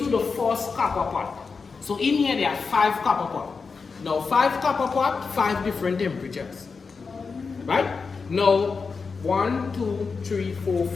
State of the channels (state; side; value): quieter; right; 4.9 dB